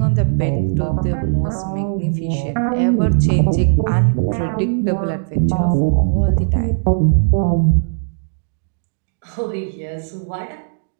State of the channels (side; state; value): left; silent; digital silence